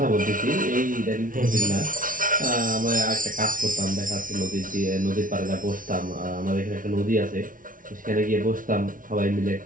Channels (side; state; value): left; late; 0.39 ms